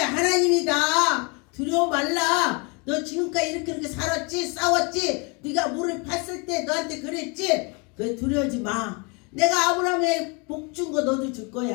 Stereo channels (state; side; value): quieter; right; 31.7 dB